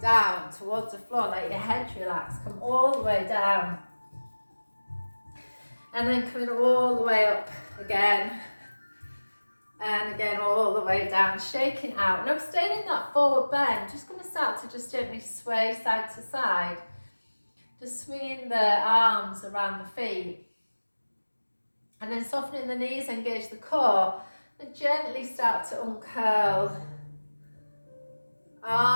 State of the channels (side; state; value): both; inverted; correlation -1.00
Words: towards the floor, let your head relax, come all the way down. And then coming all the way up again. And again, all the way down, shaking out. Now staying in that forward bend, just going to start to just gently sway side to side. Just swinging the arms around the feet. And then softening the knees, engage the core. And gently start to uncurl.